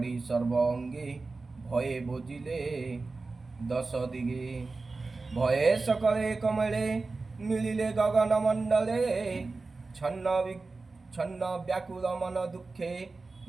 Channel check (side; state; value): left; quieter; 3.8 dB